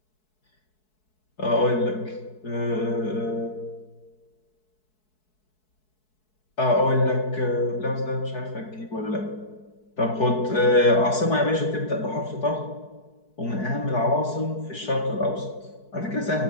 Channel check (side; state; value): right; late; 4.7 ms